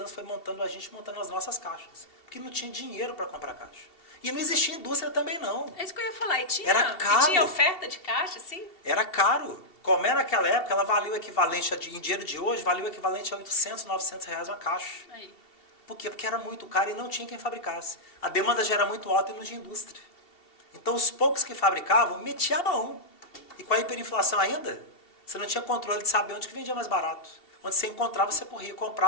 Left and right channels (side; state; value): right; late; 2.7 ms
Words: foi montando as nossas caixas. Porque não tinha dinheiro para comprar caixa. E não existia indústria também, não. É isso que eu ia falar. E tinha, Era caro. E tinha oferta de caixa, assim? Era caro. Como naquela época, ela valia o equivalente, em dinheiro de hoje, valia o equivalente a 800, 900 reais uma caixa. Aí. Por quê? Porque era muito caro e não tinha quem fabricasse. A demanda já era muito alta e não tinha indústria. Então, os poucos que fabricavam, metiam a mão. E com a hiperinflação ainda, você não tinha controle de saber onde que vendia mais barato. Onde você encontrava, você corria e